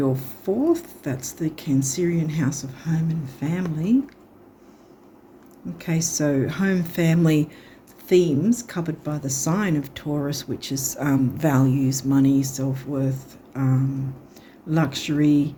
fourth. That's the Cancerian house of home and family. Okay, so home, family themes covered by the sign of Taurus, which is values, money, self-worth, luxury,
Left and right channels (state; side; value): identical; both; correlation 1.00